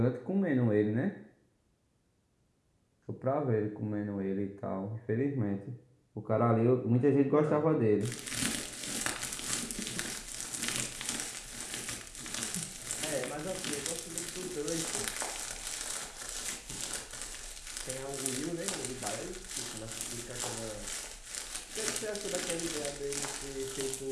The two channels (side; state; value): both; identical; correlation 1.00